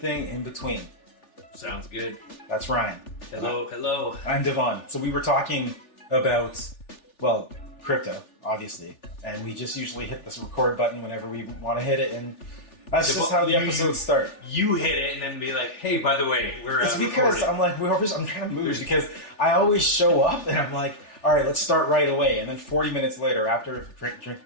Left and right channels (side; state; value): right; late; 3.4 ms